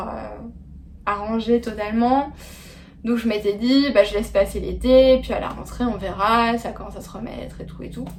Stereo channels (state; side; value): identical; both; correlation 1.00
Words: arrangé totalement. Donc je m'étais dit, bah, je laisse passer l'été, puis à la rentrée on verra, ça commence à se remettre et tout et tout.